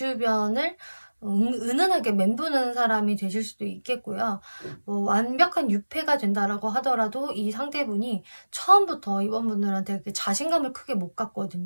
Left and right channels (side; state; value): both; inverted; correlation -1.00